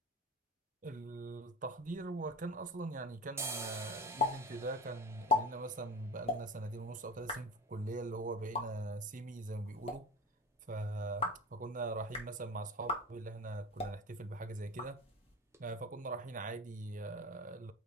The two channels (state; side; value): normal; both; correlation 0.32